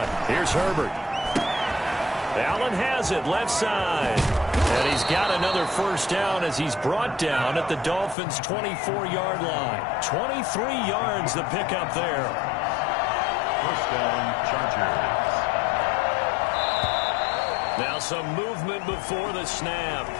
Here's Herbert. Allen has it left side. And he's got another 1st down as he's brought down at the Dolphins' 24-yard line. 23 yards the pickup there. 1st down, Chargers. Now some movement before the snap.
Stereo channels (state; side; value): drops out; right; at 8.2 s